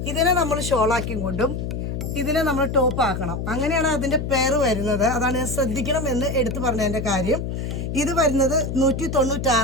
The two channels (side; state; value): left; noise; hum, 4 dB below the sound